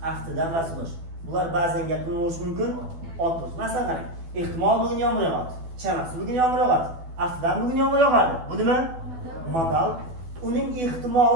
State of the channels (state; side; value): late; left; 12 ms